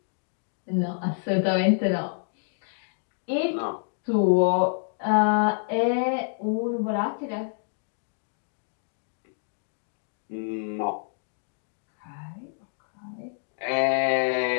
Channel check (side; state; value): right; silent; digital silence